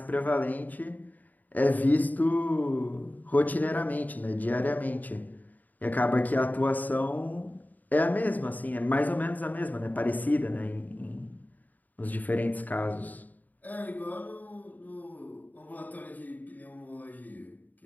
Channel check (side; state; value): right; late; 0.082 ms